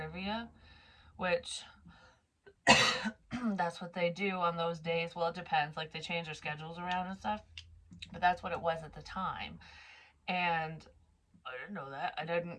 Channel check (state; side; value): identical; both; correlation 1.00